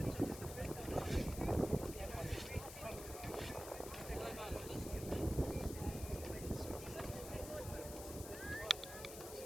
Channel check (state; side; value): noise; left; hiss, 10 dB below the sound